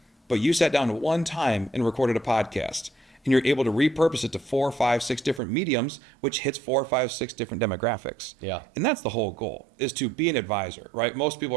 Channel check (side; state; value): left; drops out; at 5.4 s